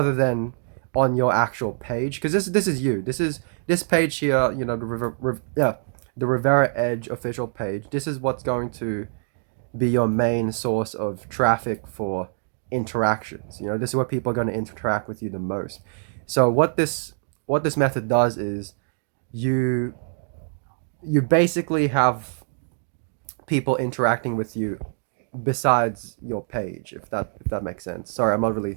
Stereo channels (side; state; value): left; silent; digital silence